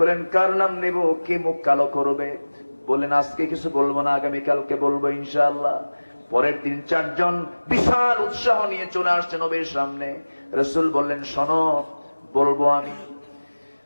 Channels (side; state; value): both; inverted; correlation -1.00